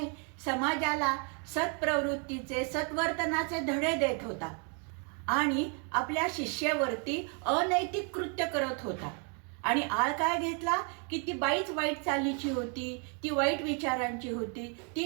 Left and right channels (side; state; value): left; quieter; 38.2 dB